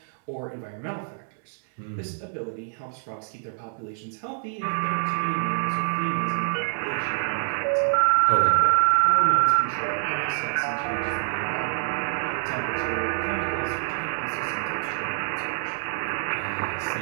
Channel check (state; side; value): silent; left; digital silence